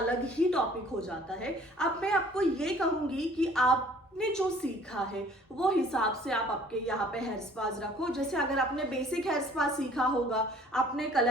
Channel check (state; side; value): normal; both; correlation 0.54